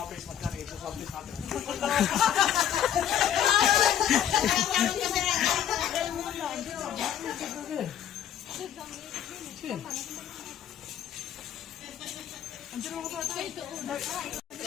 face mask ito sa office natin.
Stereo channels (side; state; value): right; quieter; 10.1 dB